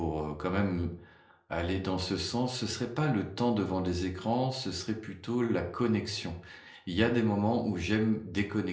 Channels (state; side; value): identical; both; correlation 1.00